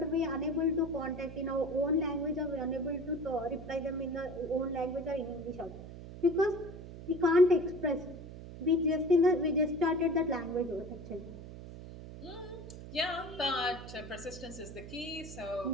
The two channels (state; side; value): noise; right; hum, 12 dB below the sound